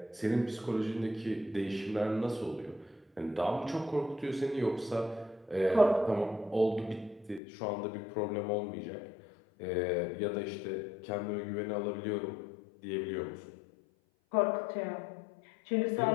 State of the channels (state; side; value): drops out; right; at 7.4 s